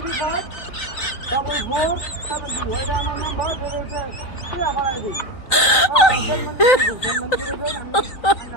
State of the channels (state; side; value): late; right; 3.9 ms